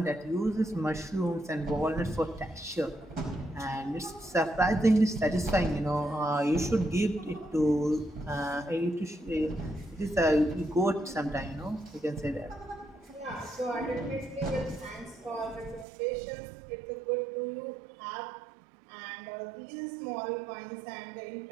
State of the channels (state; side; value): drops out; left; at 15.9 s